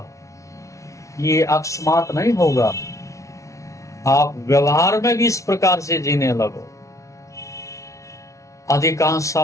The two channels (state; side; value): late; right; 0.15 ms